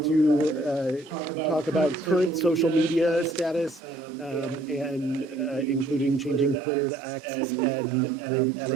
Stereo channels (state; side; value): drops out; left; at 6.6 s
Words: talk about current social media status, and including changing Twitter to X and